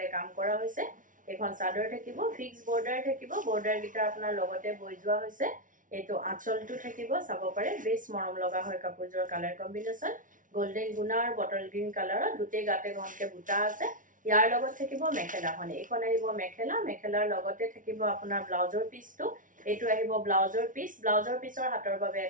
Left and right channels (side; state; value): left; late; 0.38 ms